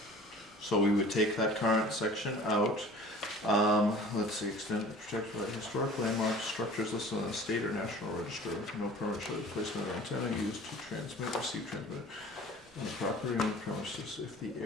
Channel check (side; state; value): both; normal; correlation 0.45